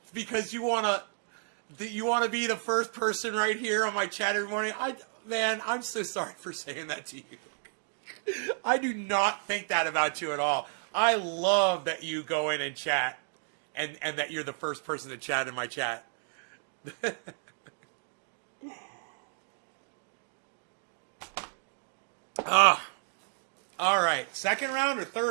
because you wanna be the first person right here on my chat every morning, man, I'm so sorry for saying that to you. I do not think that about you at all. I love that you go in and chat, and that you're the first person to chat in my chat. All right. Second round or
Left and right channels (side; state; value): left; silent; digital silence